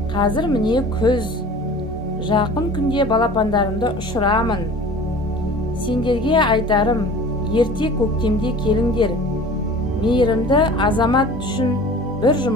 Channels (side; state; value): both; normal; correlation 0.42